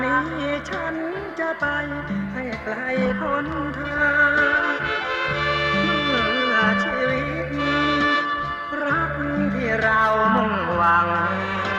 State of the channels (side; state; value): both; identical; correlation 1.00